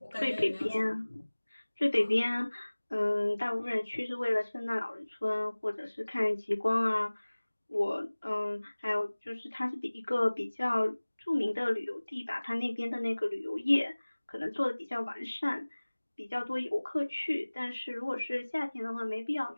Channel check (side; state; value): both; inverted; correlation -1.00